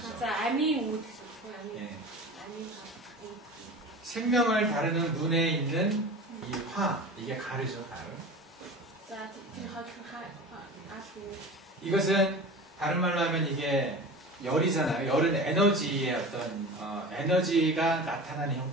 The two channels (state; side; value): normal; both; correlation 0.34